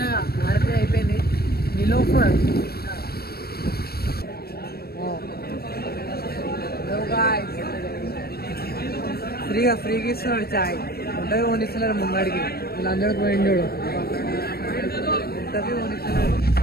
ఆర్పీ అయిపోయింది నిలోఫర్ ఫ్రీగా ఇస్తున్నాడు చాయ్ ఉంటుంది కొనిస్తున్నారు ముంగడికి వీళ్ళందరికీ పోయింది చూడు ఉంటుంది కొనిస్తున్నారు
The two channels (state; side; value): late; right; 0.45 ms